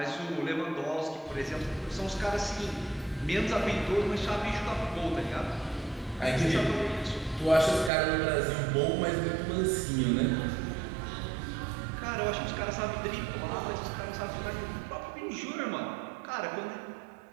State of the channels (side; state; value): left; drops out; at 7.9 s